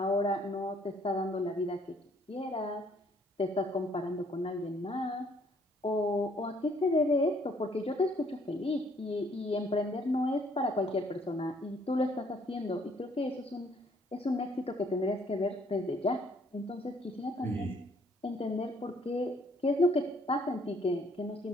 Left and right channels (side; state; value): both; normal; correlation 0.64